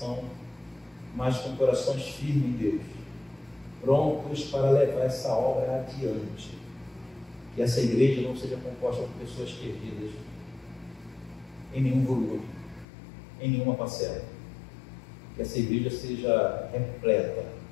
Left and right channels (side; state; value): right; drops out; at 12.9 s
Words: mas com corações firmes em Deus, prontos para levar essa obra adiante. Que essa igreja não seja composta por pessoas perdidas em nenhum volume, em nenhuma parcela. Que essa igreja seja repleta